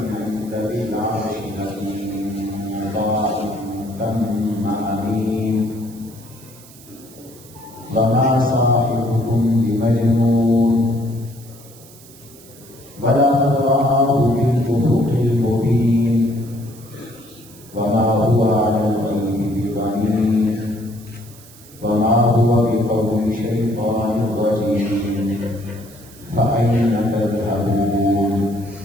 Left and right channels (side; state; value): right; noise; hiss, 22 dB below the sound